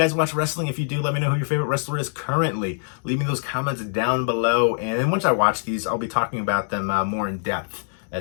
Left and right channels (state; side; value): silent; right; digital silence